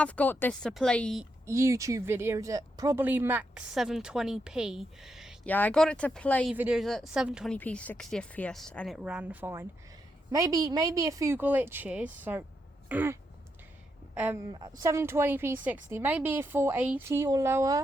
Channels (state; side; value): normal; both; correlation 0.82